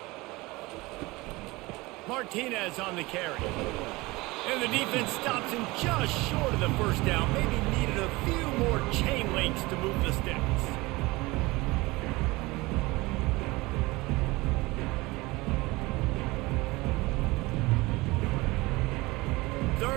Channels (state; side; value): quieter; left; 22.0 dB